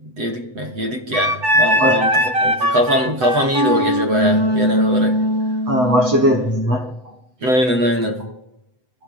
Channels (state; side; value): late; left; 8.0 ms